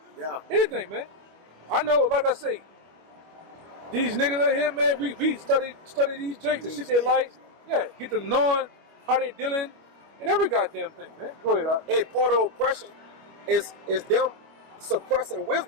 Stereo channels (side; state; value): left; late; 25 ms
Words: Yeah. Anything, man. I know, like I say, these niggas out here, man, we study these jakes and shit they like. Yeah, get to knowing how they dealing and every goddamn thing, man. Go ahead, Hey, part of oppression is them suppressing